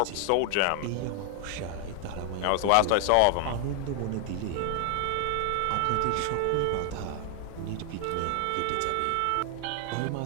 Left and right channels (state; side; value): different; both; correlation 0.00